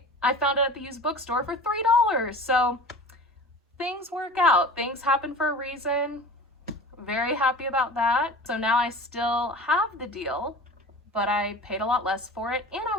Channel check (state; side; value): normal; both; correlation 0.38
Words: I found it at the used bookstore for $3. So things work out, things happen for a reason. Very happy about that. So now I still have The Deal, but I paid a lot less for it, and I